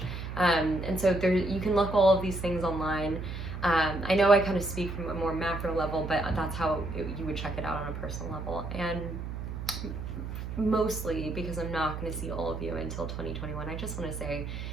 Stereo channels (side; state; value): right; noise; hum, 6 dB below the sound